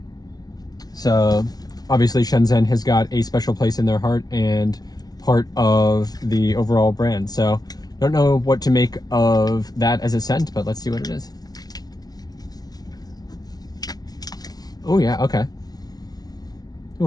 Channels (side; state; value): right; late; 0.19 ms